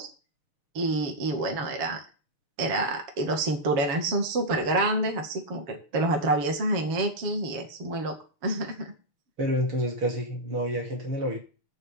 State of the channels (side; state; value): left; late; 7.2 ms